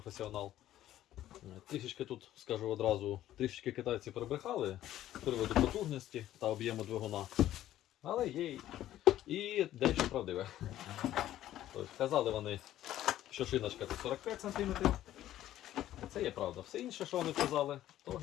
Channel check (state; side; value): quieter; right; 13.1 dB